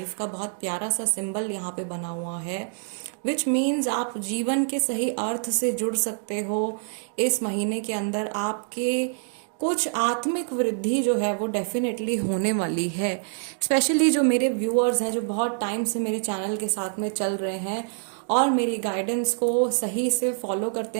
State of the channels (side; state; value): left; silent; 61 dB below the other